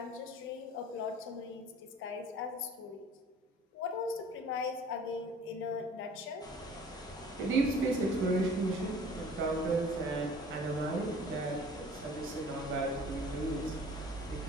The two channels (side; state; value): both; normal; correlation 0.48